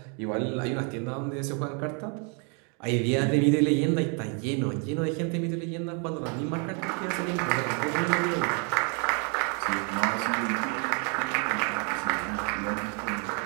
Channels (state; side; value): quieter; left; 37.2 dB